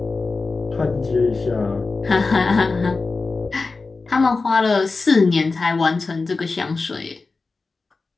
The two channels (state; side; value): quieter; right; 3.9 dB